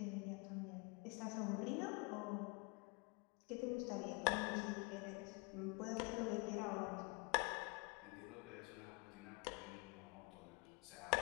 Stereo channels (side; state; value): right; quieter; 30.6 dB